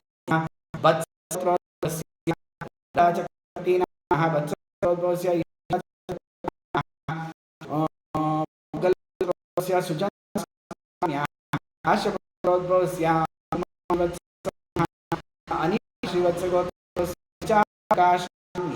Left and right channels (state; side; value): identical; both; correlation 1.00